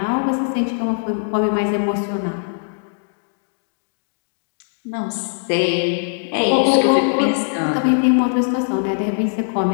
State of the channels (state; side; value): silent; right; digital silence